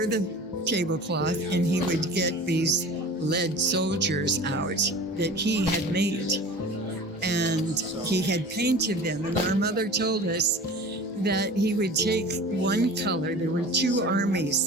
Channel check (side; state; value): both; normal; correlation 0.39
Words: the tablecloth, and he would get these lead soldiers out that he had made. And he had painted them. And our mother told us that he would take one color. There were 2